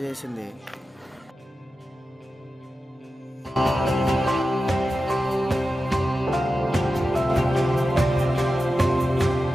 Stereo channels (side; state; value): both; normal; correlation 0.92